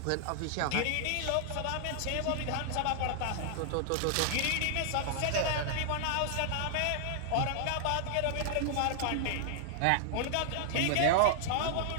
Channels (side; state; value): both; different; correlation -0.01